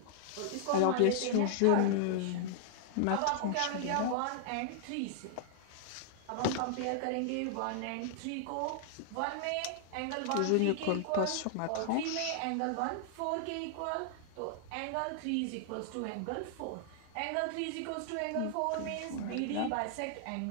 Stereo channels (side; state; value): both; different; correlation -0.01